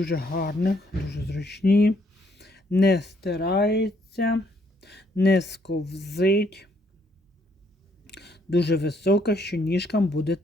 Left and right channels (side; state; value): both; normal; correlation 0.70